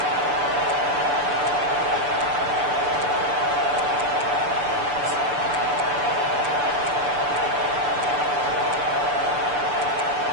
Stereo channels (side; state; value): left; late; 6.9 ms